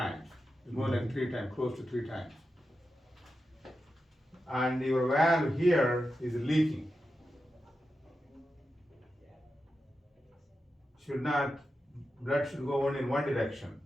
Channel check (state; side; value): normal; both; correlation 0.90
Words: It's more than 3 times, close to 3 times. And your valve here is leaking. Blood should go only in one direction.